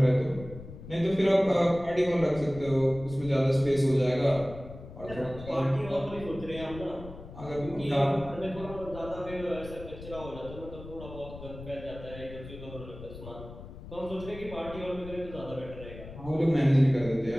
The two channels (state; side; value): noise; left; rumble, 14 dB below the sound